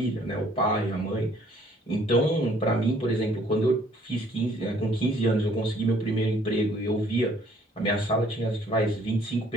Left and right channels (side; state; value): both; normal; correlation 0.60